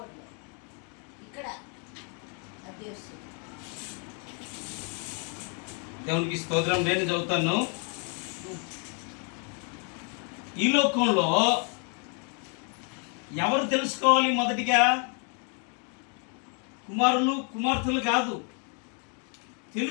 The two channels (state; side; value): quieter; right; 38.9 dB